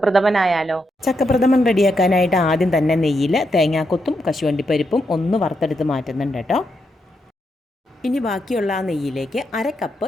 ചക്കപ്രഥമൻ റെഡിയാക്കാനായിട്ട് ആദ്യം തന്നെ നെയ്യിൽ തേങ്ങാക്കൊത്തും കശുവണ്ടിപ്പരിപ്പും ഒന്ന് വറുത്തെടുത്ത് മാറ്റുന്നുണ്ട് കേട്ടോ. ഇനി ബാക്കിയുള്ള ആ നെയ്യിലേക്ക് 1/2 കപ്പ്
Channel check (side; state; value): both; normal; correlation 0.82